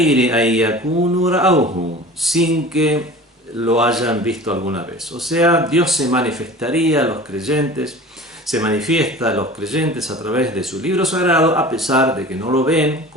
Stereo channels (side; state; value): both; normal; correlation 0.39